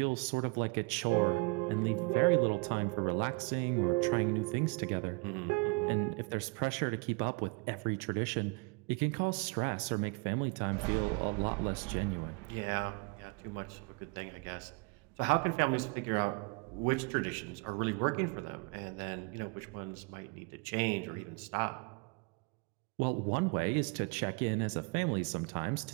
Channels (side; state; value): left; quieter; 30.5 dB